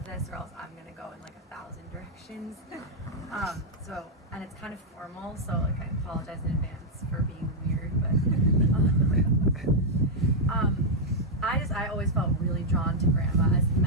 this or else I'm gonna go in like 1,000 directions. And it's kind of formal, so like I apologize in advance for being weird, but I always felt really drawn to Grandma, as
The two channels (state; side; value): normal; both; correlation -0.03